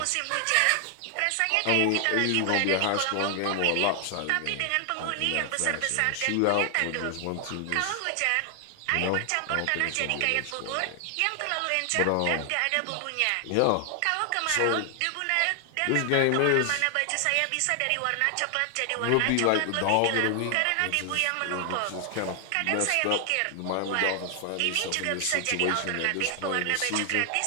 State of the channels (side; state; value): both; different; correlation 0.00